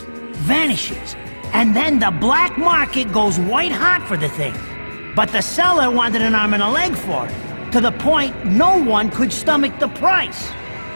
vanishes, and then the black market goes white hot for the thing. But the seller wanted an arm and a leg for it, to the point no one could stomach the price.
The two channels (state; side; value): inverted; both; correlation -1.00